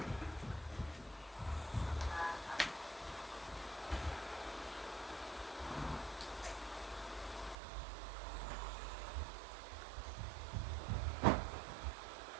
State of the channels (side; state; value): left; drops out; at 7.6 s